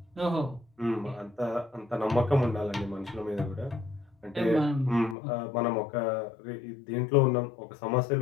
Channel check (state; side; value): drops out; right; at 5.2 s